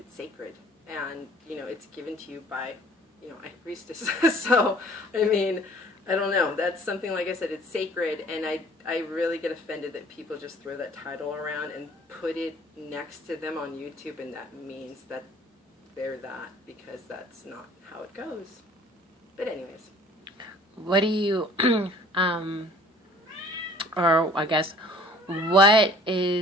sacred. And, you know, it's given to you by, you know, a priestess. So, I mean, I don't know. That's something, like I said, it's sacred, and I really get offended that people just throw that title around and put it next to them on YouTube, and that means that they're that, because that's not how it goes. But anyways. What do you, or I guess, what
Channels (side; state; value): both; normal; correlation 0.52